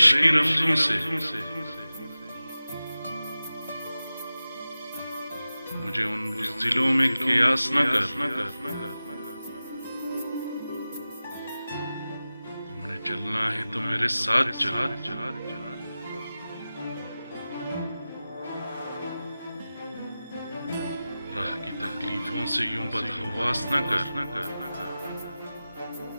की रमजों से, मुझे उन बुज़दिलों में क़यास न कर। तुमने चलना है तो मेरे साथ चलो, राह की तकलीफों से यूं बदहवास न कर।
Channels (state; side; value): inverted; both; correlation -0.95